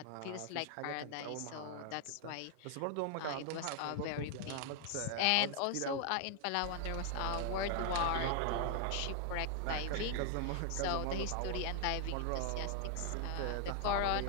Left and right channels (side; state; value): both; different; correlation 0.00